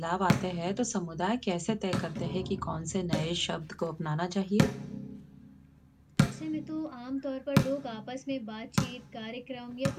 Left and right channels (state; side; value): identical; both; correlation 1.00